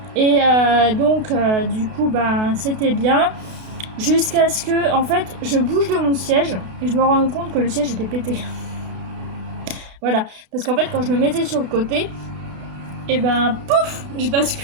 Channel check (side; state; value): left; late; 32 ms